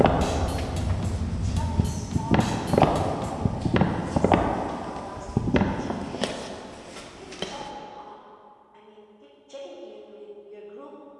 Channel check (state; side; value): identical; both; correlation 1.00